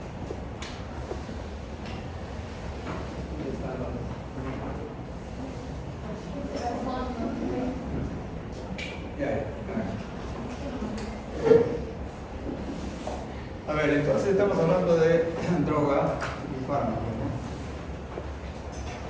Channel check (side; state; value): both; identical; correlation 1.00